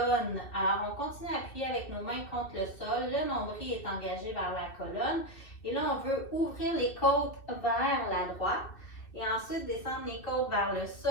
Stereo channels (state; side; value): late; right; 2.6 ms